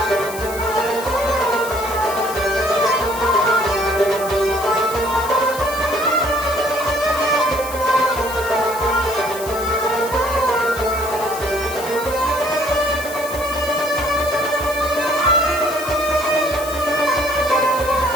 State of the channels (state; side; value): noise; left; hiss, 12 dB below the sound